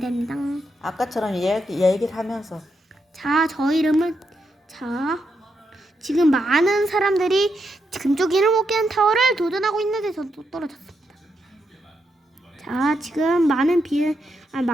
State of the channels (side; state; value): both; normal; correlation 0.82